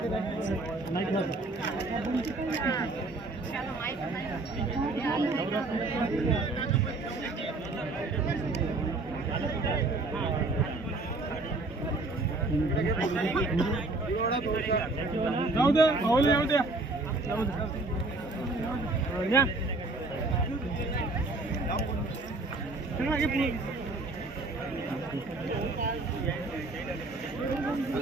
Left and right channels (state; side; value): quieter; left; 3.2 dB